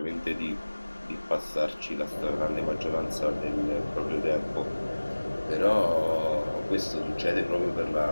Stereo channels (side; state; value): both; inverted; correlation -1.00